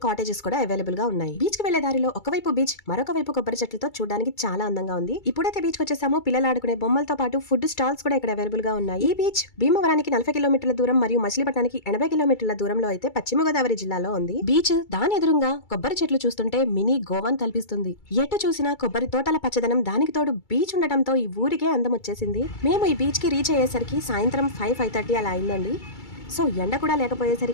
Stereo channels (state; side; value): late; right; 2.3 ms